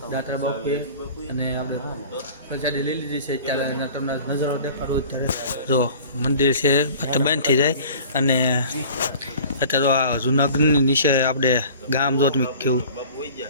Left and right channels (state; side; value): inverted; both; correlation -0.44